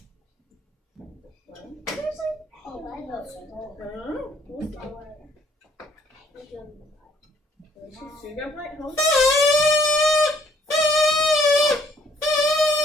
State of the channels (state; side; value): normal; both; correlation 0.63